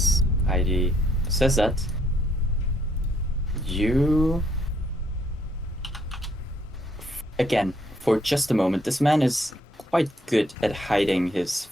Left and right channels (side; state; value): both; normal; correlation 0.69